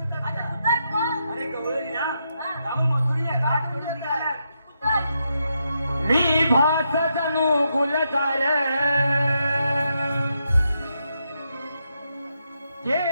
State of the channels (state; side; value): inverted; both; correlation -0.82